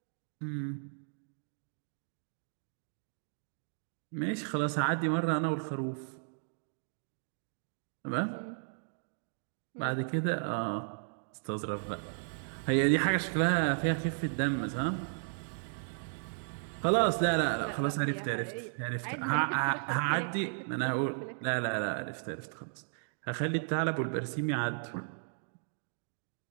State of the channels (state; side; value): silent; left; digital silence